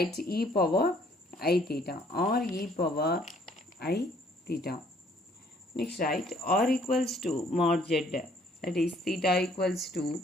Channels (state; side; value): normal; both; correlation 0.62